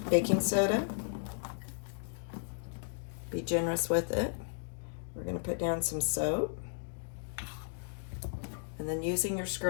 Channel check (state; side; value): silent; right; digital silence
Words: baking soda. Be generous with it. We're going to put down some soap. And then using your